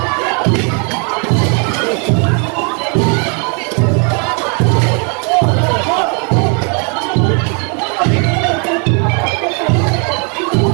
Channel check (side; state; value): left; quieter; 37.6 dB